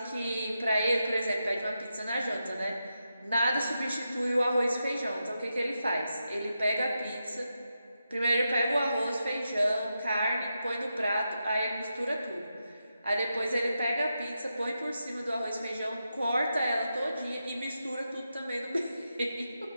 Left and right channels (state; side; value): inverted; both; correlation -0.87